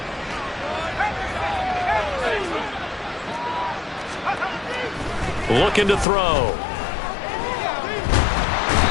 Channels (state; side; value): drops out; right; at 6.1 s